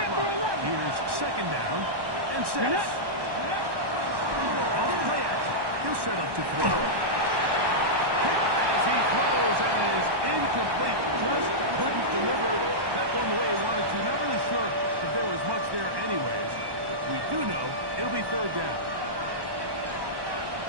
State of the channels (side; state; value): left; late; 1.1 ms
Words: line, here's second down and 6. Off play action. He'll set up to throw. As he throws, and it is incomplete. Just couldn't deliver that one the way he wanted to. Not really sure if there was much there anyways. We do know it'll be third down.